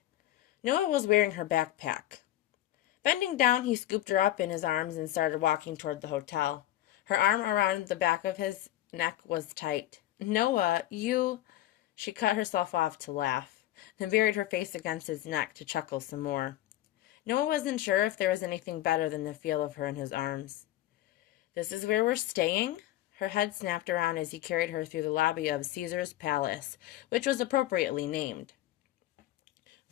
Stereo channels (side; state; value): right; quieter; 14.3 dB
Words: Noah was wearing her backpack. Bending down, he scooped her up in his arms and started walking toward the hotel. Her arm around the back of his neck was tight. Noah, you... She cut herself off to laugh, then buried her face against his neck to chuckle some more. Noah wasn't sure if there was anything better than the feel of her in his arms. This is where we're staying? Her head snapped around as he carried her through the lobby of Caesar's Palace, which was appropriately named.